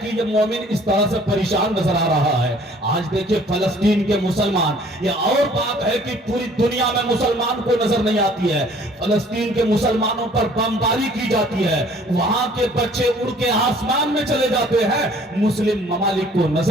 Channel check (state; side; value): normal; both; correlation 0.55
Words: کہ یہ مومن اس طرح سے پریشان نظر آ رہا ہے۔ آج دیکھیں فلسطین کے مسلمان، یہ اور بات ہے کہ پوری دنیا میں مسلمان کو نظر نہیں آتی ہے، فلسطین کے مسلمانوں پر بمباری کی جاتی ہے، وہاں کے بچے اڑ کے آسمان میں چلے جاتے ہیں، مسلم ممالک کو